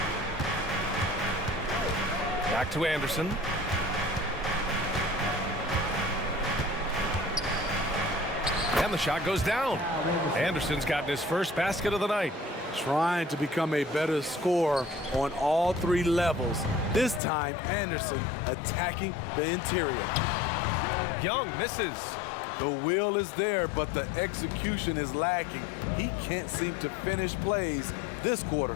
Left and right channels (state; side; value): drops out; right; at 17.2 s